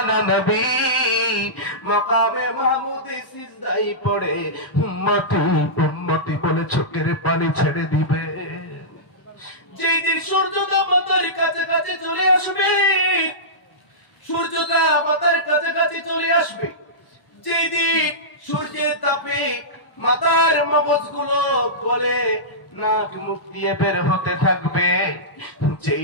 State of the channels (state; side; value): late; right; 1.0 ms